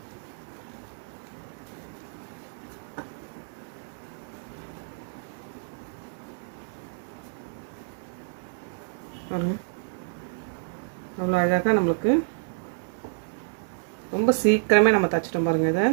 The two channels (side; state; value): left; silent; digital silence